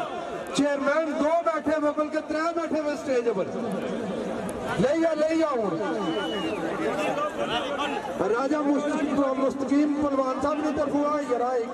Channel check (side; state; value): both; identical; correlation 1.00